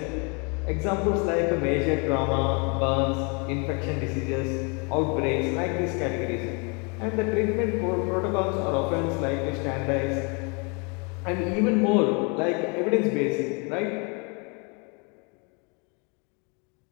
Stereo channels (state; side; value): quieter; right; 33.4 dB